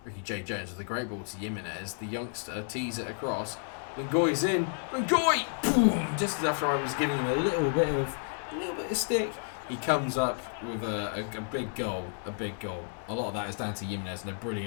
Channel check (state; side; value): silent; right; 57 dB below the other